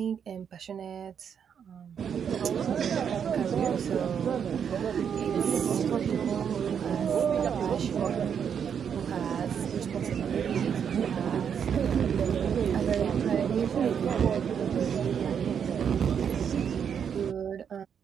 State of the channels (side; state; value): left; quieter; 7.7 dB